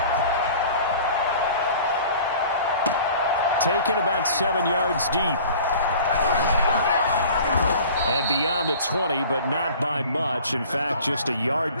Taken about 7 yards deep. And beyond the 20, but not by much. In fact, just a yard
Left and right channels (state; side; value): inverted; both; correlation -0.46